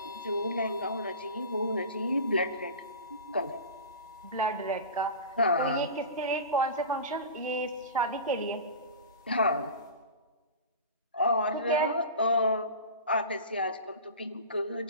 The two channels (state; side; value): inverted; both; correlation -0.32